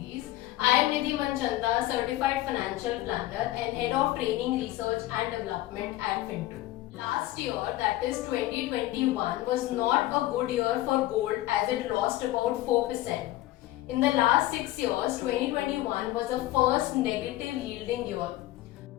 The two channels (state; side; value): quieter; right; 16.3 dB